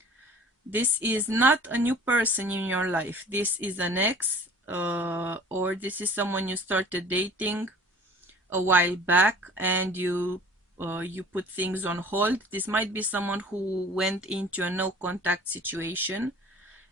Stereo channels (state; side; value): normal; both; correlation 0.47